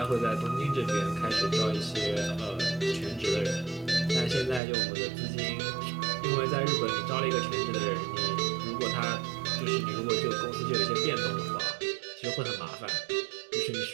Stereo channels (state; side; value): drops out; left; at 4.6 s